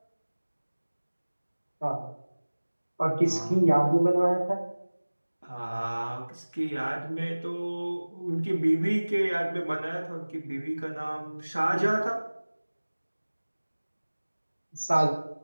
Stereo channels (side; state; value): both; inverted; correlation -1.00